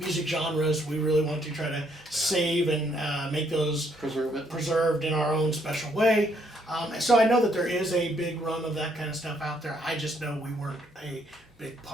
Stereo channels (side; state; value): both; normal; correlation 0.70